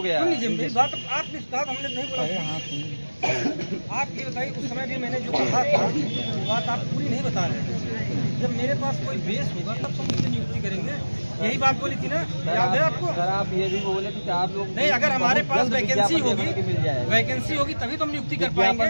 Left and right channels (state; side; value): inverted; both; correlation -1.00